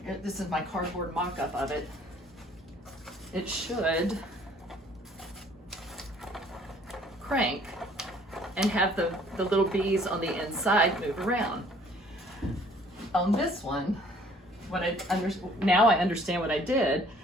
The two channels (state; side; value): normal; both; correlation 0.57